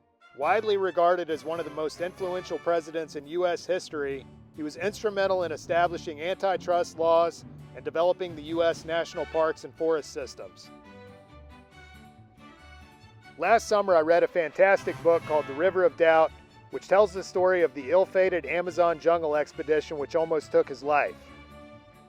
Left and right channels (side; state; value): both; identical; correlation 1.00